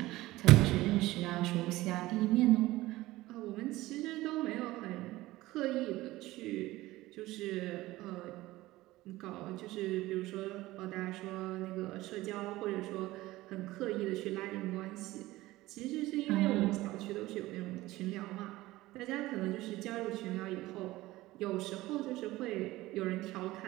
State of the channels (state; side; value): quieter; left; 17.9 dB